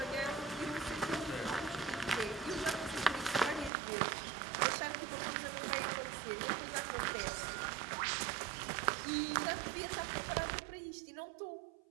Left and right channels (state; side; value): drops out; left; at 3.7 s